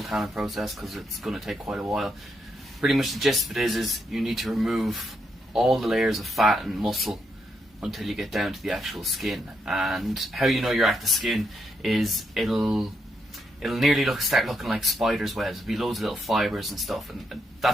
tanning process because it's going to take quite a while. Pretty much the gist of it is you need to remove all the layers of fat and muscle until you get down to the actual skin. And how you know you're at the skin is it'll nearly start looking like spider's webs. There'll be loads of little fibres and stuff, and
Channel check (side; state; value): both; normal; correlation 0.79